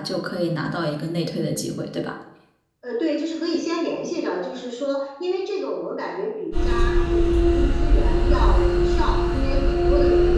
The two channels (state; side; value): identical; both; correlation 1.00